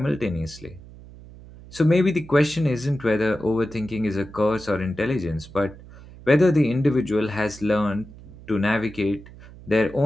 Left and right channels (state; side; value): noise; right; hum, 19 dB below the sound